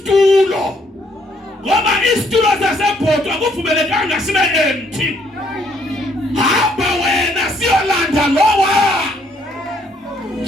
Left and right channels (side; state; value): both; normal; correlation 0.68